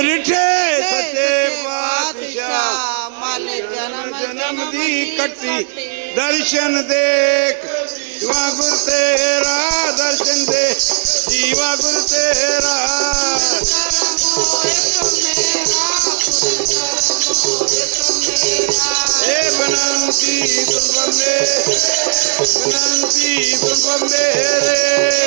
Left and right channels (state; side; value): silent; left; digital silence